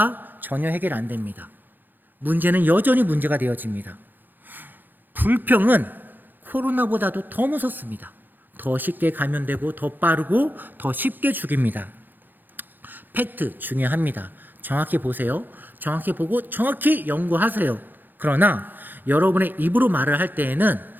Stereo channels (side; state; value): left; late; 0.089 ms